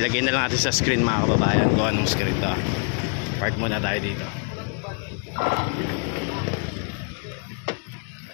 na lang natin sa screen mga kababayan kung anong screen to. Park muna tayo dito.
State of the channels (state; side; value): quieter; right; 38.5 dB